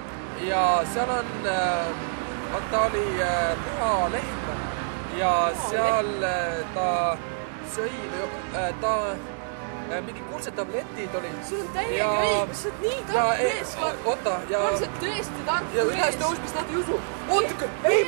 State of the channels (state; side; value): silent; left; digital silence